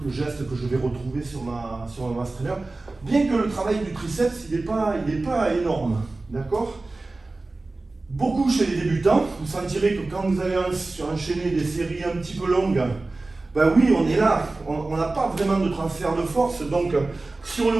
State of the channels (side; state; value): left; quieter; 3.2 dB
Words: le geste que je vais retrouver sur ma mass trainer. Bien que le travail du triceps, il n'est pas énorme, d'accord? Beaucoup chez les débutants, vous sentirez que quand vous allez enchaîner des séries un petit peu longues, ben oui, on est là, on n'a pas vraiment de transfert de force, donc sur le